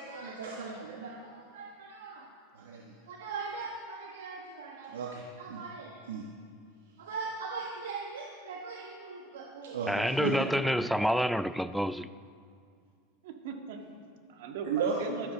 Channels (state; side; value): normal; both; correlation 0.53